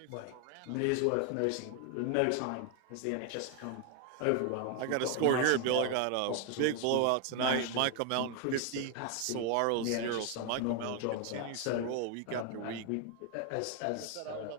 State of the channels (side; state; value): both; different; correlation 0.01